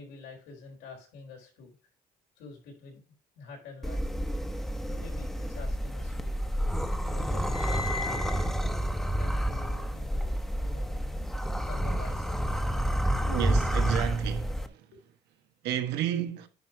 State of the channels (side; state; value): both; normal; correlation 0.84